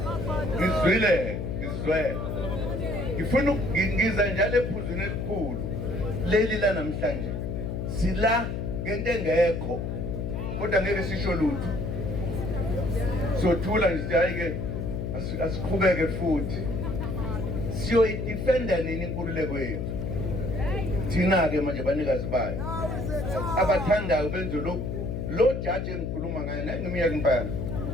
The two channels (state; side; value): noise; left; hum, 3 dB below the sound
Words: ngizwile ngifuna ngiza njalo ephuzweni elikhulu leli la namhlanje sila ngento engekho kodwa ngeke sisho lutho. Sothula nje hayi-ke asiqhubeke futhi siyoyidefenda nini inkululeko yethu thina-ke manje banikazi bayo abathandayo benze lo jaji engikhuluma ngayo naye ngiminyaka impana